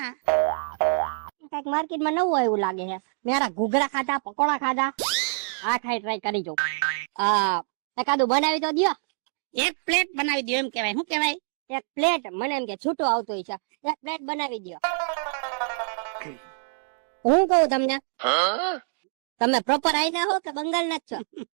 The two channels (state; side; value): silent; left; digital silence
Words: કઈક માર્કેટમાં નવું આવ્યું લાગે છે. મેરા ઘૂઘરા ખાધા, પકોડા ખાધા, આ ખાઈ ટ્રાય કરી જો. એકાદું બનાવી તો દ્યો. એક પ્લેટ બનાવી દો એમ કેવાય. શું કેવાય? એક પ્લેટ મને એમ કે છૂટો આવતો હોય છે, એક પ્લેટ બનાવી દ્યો. હું કહું તમને, તમે પ્રોપર આયના હો કે બંગાળ ના જ છો?